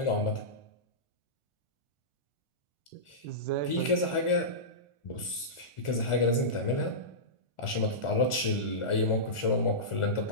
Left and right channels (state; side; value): late; right; 1.4 ms